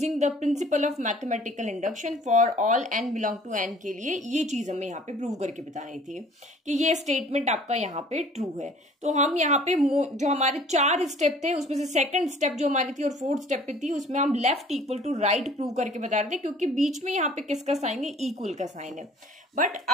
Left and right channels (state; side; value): normal; both; correlation 0.51